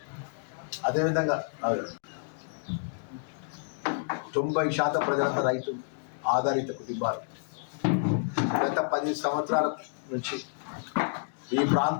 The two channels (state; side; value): silent; right; digital silence